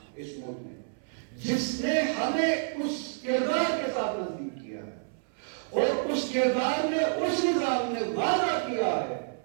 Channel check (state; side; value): silent; left; 58 dB below the other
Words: اس ملک میں, جس نے ہمیں اس کردار کے ساتھ نزدیک کیا ہے. اور اس کردار میں اس نظام نے وعدہ کیا ہے